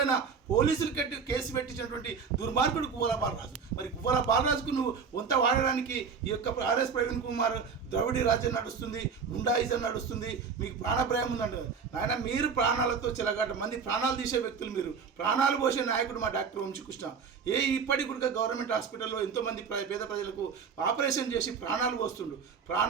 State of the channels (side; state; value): left; quieter; 5.9 dB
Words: పోలీసులు కేసు పెట్టించినటువంటి దుర్మార్గుడు గువ్వల బాలరాజు. మరి గువ్వల బాలరాజుకు నువ్వు వంత వాడడానికి ఈ యొక్క ఆర్ఎస్ ప్రవీణ్ కుమార్ ద్రవిడీ రాజ్యం నడుస్తుంది, గుండాయిజం నడుస్తుంది, మీకు ప్రాణభయం ఉందండి. ఆయన మీరు ప్రాణాలతో చెలగాట మంది ప్రాణాలు తీసే వ్యక్తులు, మీరు ప్రాణాలు పోసే నాయకుడు మా డాక్టర్ వంశీకృష్ణ. ఇప్పటికి కూడా గవర్నమెంట్ హాస్పిటల్లో ఎంతోమంది పేద ప్రజలకు ఆపరేషన్ చేసి ప్రాణాలు పోస్తుండు.